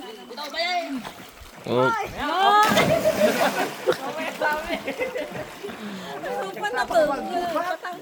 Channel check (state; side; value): identical; both; correlation 1.00